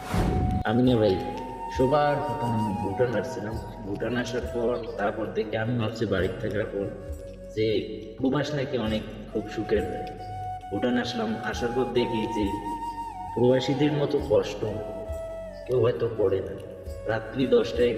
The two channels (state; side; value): identical; both; correlation 1.00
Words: আমি না ভাই সবার প্রথম ভুটান আসছিলাম। ভুটান আসার পর তারপর দেখি আমি ভাবছি বাড়িতে থাকার পর যে প্রবাস নাকি অনেক খুব সুখের হয়। ভুটান আসলাম, আসার পর দেখি যে প্রবাসীদের মতো কষ্ট কেউ হয়তো করে না। রাত্রি